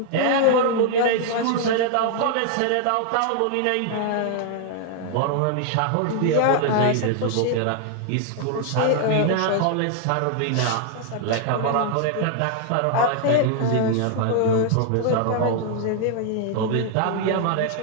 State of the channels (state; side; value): different; both; correlation 0.00